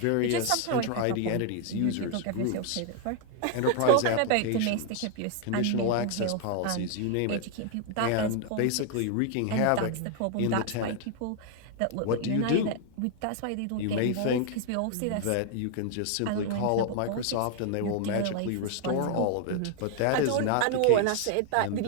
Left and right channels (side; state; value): both; different; correlation 0.00